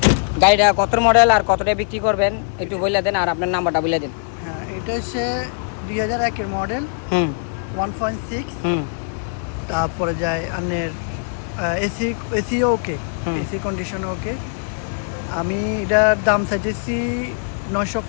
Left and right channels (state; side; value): silent; right; 65 dB below the other